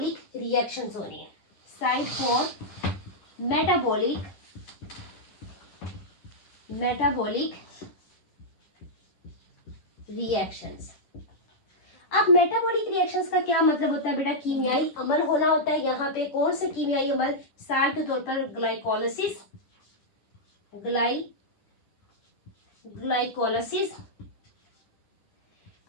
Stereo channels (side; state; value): right; late; 10 ms